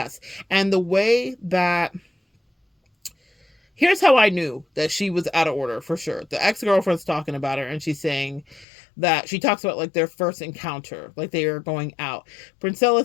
And the way that, here's how I knew that she was out of order for sure. The ex-girlfriend's talking about her and she's saying that she talks about like their first encounter, like they are going out. Princella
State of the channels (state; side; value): drops out; right; at 8.7 s